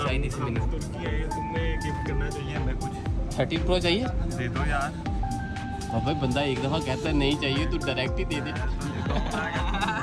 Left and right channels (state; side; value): identical; both; correlation 1.00